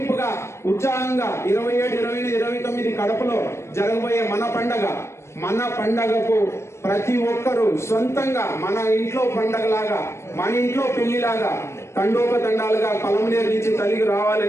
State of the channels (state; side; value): late; right; 0.13 ms